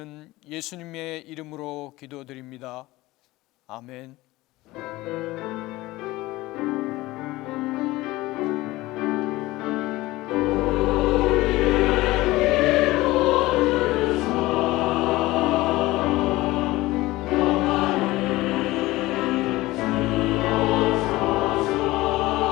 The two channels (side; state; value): right; quieter; 19.0 dB